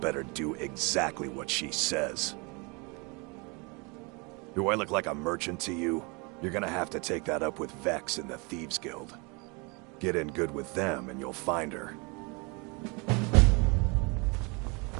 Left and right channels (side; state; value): left; quieter; 29.8 dB